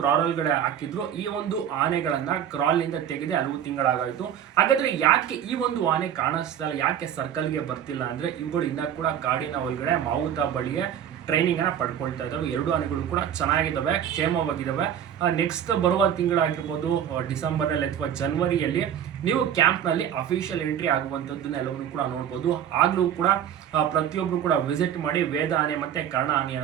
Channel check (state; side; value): quieter; left; 9.5 dB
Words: ಒಳಗಡೆ ಹಾಕಿದ್ರು. ಈ ಒಂದು ಆನೆಗಳನ್ನ ಕ್ರಾಲ್ ನಿಂದ ತೆಗೆದು ಹಲವು ತಿಂಗಳಾಗಾಯ್ತು. ಹಾಗಾದ್ರೆ ಯಾಕೆ ಈ ಒಂದು ಆನೆ ಕಾಣಿಸ್ತಾ ಇಲ್ಲ, ಯಾಕೆ ಸರ್ಕಲ್ಗೆ ಬರ್ತಿಲ್ಲ ಅಂದ್ರೆ ಇವುಗಳು ಇನ್ನ ಕೂಡ ಕಾಡಿನ ಒಳಗಡೆ ಮಾವುತ ಬಳಿಯೇ ಟ್ರೈನಿಂಗ್ ಅನ್ನ ಪಡ್ಕೊಳ್ತಾ ಇದ್ದಾವೆ. ಎರಡು ಆನೆಗಳು ಕೂಡ ಚೆನ್ನಾಗಿದ್ದಾವೆ, ಕ್ಷೇಮವಾಗಿದ್ದಾವೆ. ನೆಕ್ಸ್ಟ್ ಬರುವ ತಿಂಗಳಾಗಿರ್ಬೋದು, ಡಿಸೆಂಬರ್ನಲ್ಲಿ ಅಥವಾ ಜನವರಿಯಲ್ಲಿ ನೀವು ಕ್ಯಾಂಪ್ನಲ್ಲಿ ಅಫಿಷಿಯಲ್ ಎಂಟ್ರಿ ಆಗುವಂಥದ್ದನ್ನ ಎಲ್ಲವನ್ನೂ ಕೂಡ ನೋಡ್ಬೋದು. ಆಗ್ಲೂ ಕೂಡ ಪ್ರತಿಯೊಬ್ರು ಕೂಡ ವಿಸಿಟ್ ಮಾಡಿ ವೇದ ಆನೆ ಮತ್ತೆ ಕರ್ಣ